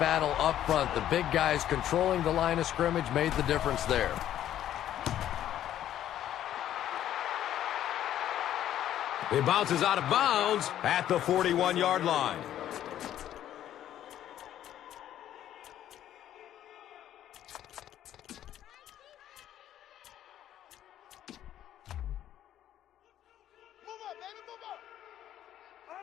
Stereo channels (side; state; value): right; quieter; 11.6 dB